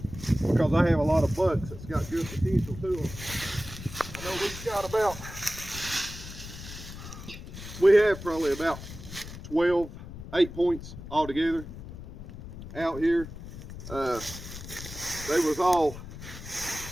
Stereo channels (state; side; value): noise; left; rumble, 12 dB below the sound